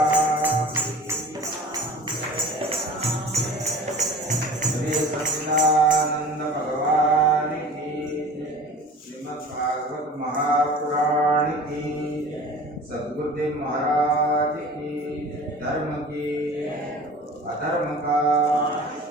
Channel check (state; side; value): normal; both; correlation 0.41